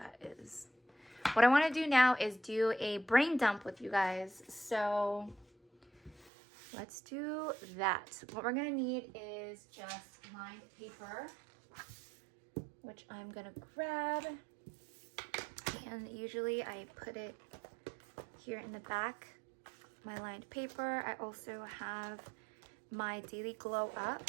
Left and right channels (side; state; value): left; drops out; at 6.3 s